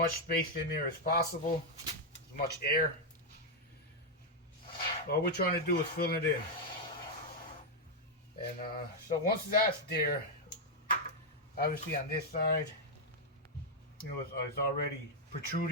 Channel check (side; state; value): both; normal; correlation -0.01